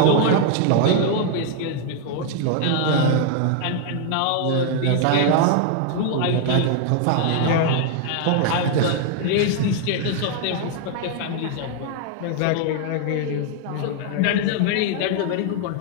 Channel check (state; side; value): different; both; correlation 0.00